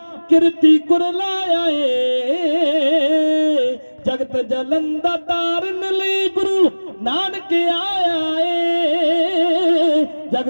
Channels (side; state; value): both; inverted; correlation -1.00